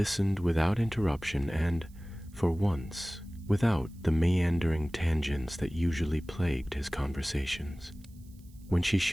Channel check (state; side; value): noise; right; hiss, 29 dB below the sound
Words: without interruption and, for once, without the meandering tangents that usually plagued his conversations. When she